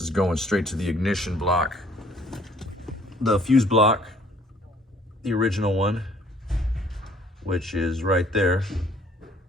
going straight to the ignition block, the fuse block, the original one. which is right there.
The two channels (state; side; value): normal; both; correlation 0.58